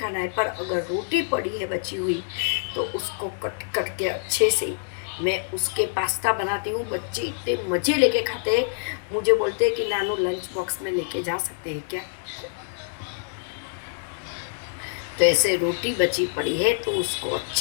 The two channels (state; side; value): silent; right; 61 dB below the other